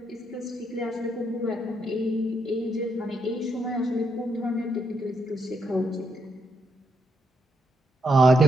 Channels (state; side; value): normal; both; correlation 0.77